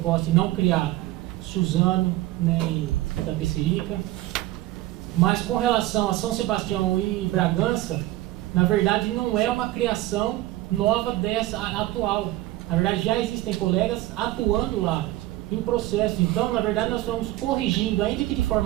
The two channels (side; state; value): left; quieter; 16.8 dB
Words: e não criar Suzano, né, em Itapecerica. Mas com relação a São Sebastião e Bragança, na verdade não é uma criação nova dessa atual. Na verdade já existem colegas atuando lá em processo. Então, na verdade, nós estamos corrigindo, ainda que de